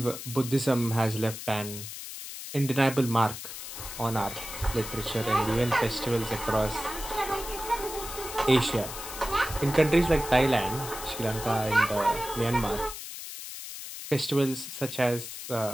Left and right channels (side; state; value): left; noise; hiss, 9 dB below the sound